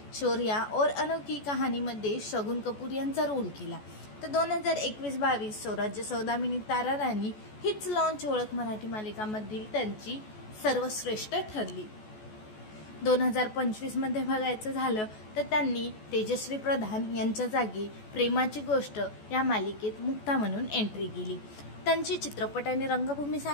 शौर्या और अनोखी कहाणीमध्ये शगुन कपूर यांचा रोल केला। तर 2021-22 स्वराज्य सौदामिनी तारा राणी हीच लॉन्च ओळख मराठी मालिकांमधील त्यांची सर्वश्रेष्ठ ठरली। 2025 मध्ये बघायचं झालं तर त्यांनी तेजश्री प्रधान यांच्या जागी प्रेमाची गोष्ट या मालिकेत मुक्ता म्हणून एंट्री केली। त्यांची चित्रपट आणि रंगभूमी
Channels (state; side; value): late; right; 14 ms